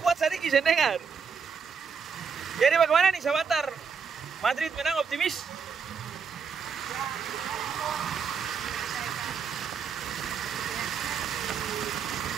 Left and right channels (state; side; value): quieter; left; 6.1 dB